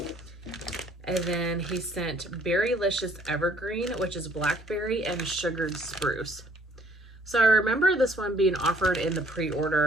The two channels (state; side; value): normal; both; correlation 0.61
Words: And then he sent Berrylicious Evergreen, which is blackberry and sugared spruce. So I remember this one being offered in the